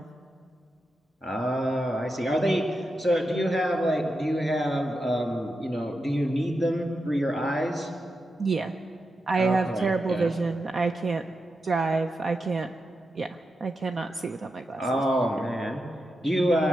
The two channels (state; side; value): normal; both; correlation 0.88